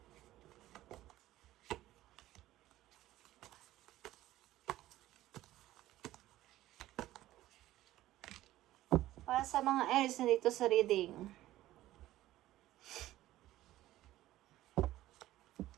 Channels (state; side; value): quieter; left; 15.1 dB